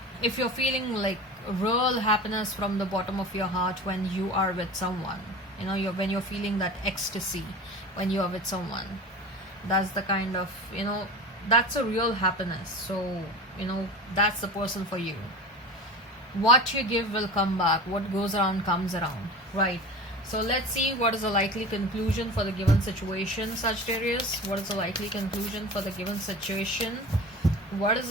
if you're feeling like real happiness from the bottom of your heart when you are with someone, when you're feeling that ecstasy when you are with someone, that's the kind of that's a real happiness. So that's the person for you. What you give will come back. What goes around comes around, right? So let's see what is the likely conclusion for the given situation, Sagittarius. What is the likely conclusion for the given situation? What is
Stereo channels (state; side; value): normal; both; correlation 0.34